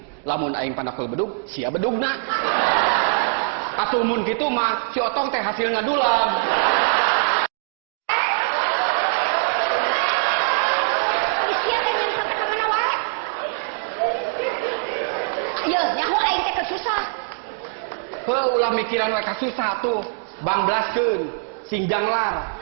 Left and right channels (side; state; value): left; silent; digital silence